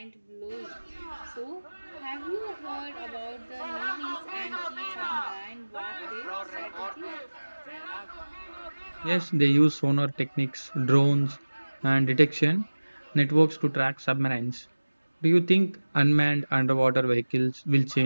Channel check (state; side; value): inverted; both; correlation -1.00